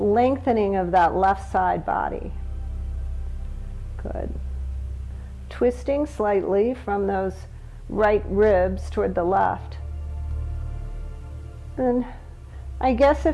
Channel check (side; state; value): both; identical; correlation 1.00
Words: of that left side body. Good. Twisting slightly from those right ribs toward the left. And I guess